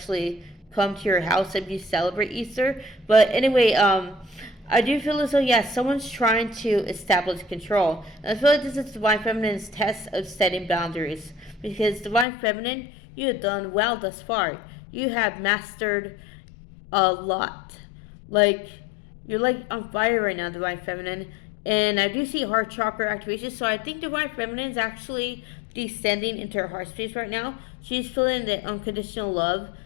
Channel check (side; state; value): right; drops out; at 12.2 s